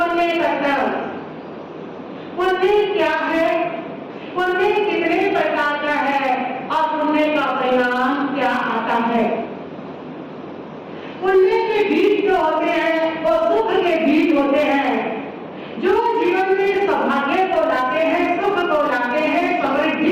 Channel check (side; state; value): both; identical; correlation 1.00